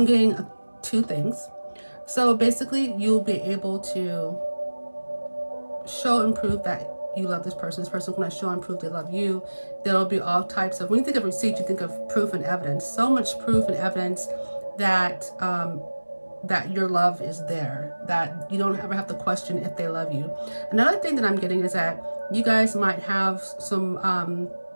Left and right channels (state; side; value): inverted; both; correlation -1.00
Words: getting 2 things. So basically you'll be able to show and prove that you love this person's going to show and prove they love you. There'll be all types of, when you think of receipts, you think of proof and evidence. So much proof and evidence that that your love is there, that you don't ever have to question if they love you. Another thing that I'm getting is that you guys might have some